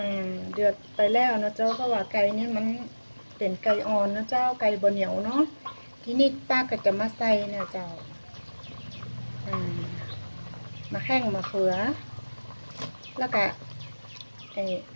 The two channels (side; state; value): both; inverted; correlation -1.00